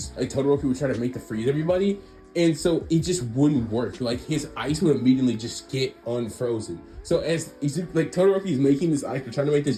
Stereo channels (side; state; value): both; identical; correlation 1.00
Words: Todoroki would try to make to freeze everybody. And so it just wouldn't work. Like his ice would immediately just get unfrozen. So as like Todoroki is making this ice, trying to make